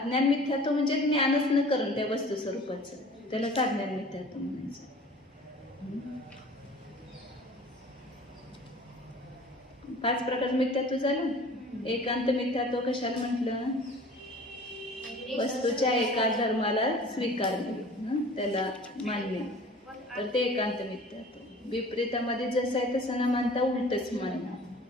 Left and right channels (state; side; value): normal; both; correlation 0.45